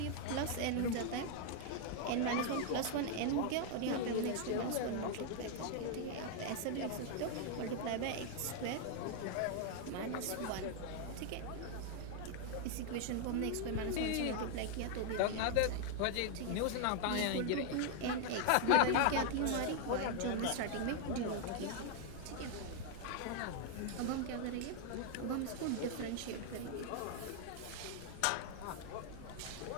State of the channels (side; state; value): both; different; correlation 0.00